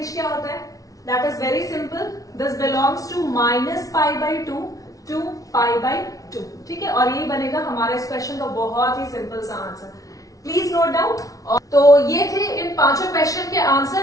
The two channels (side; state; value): right; late; 0.17 ms